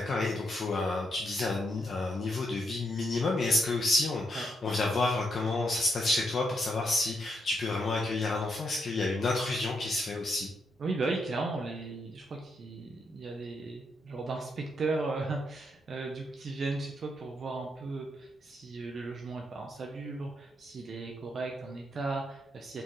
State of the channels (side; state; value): both; normal; correlation 0.79